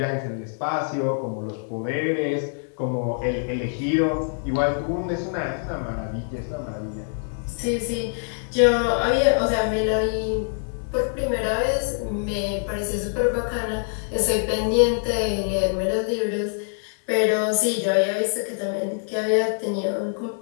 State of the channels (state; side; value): silent; right; digital silence